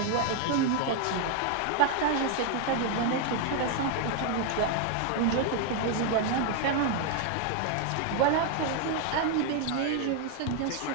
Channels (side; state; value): both; different; correlation 0.00